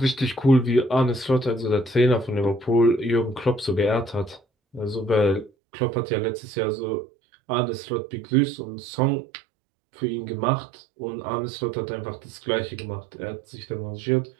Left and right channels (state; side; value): drops out; left; at 5.5 s